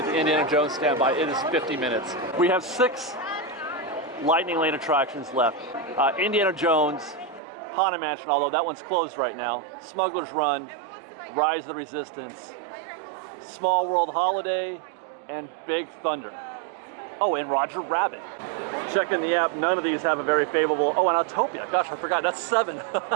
the Indiana Jones standby. It is 50 minutes. We have 6 Lightning Lane attractions left. Indiana Jones, Haunted Mansion, although that one's closed right now, Smuggler's Run, Rise of the Resistance, Small World Holiday, and Big Thunder. Oh, and Roger Rabbit. Checking the app, none of these have a very favorable, oh, and Autopia, gosh, I forgot, that's 7.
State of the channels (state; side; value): drops out; left; at 7.4 s